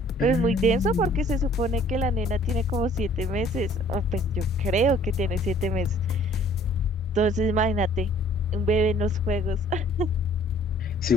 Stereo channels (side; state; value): both; normal; correlation 0.56